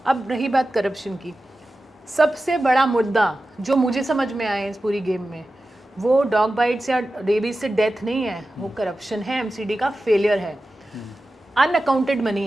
अब रही बात करप्शन की, सबसे बड़ा मुद्दा जो मुझे समझ में आया इस पूरी गेम में, वो डॉग बाइट्स या रेबीज से डेथ नहीं है, वो करप्शन है, एमसीडी का फेलियर है, अनअकाउंटेड मनी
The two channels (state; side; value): normal; both; correlation 0.93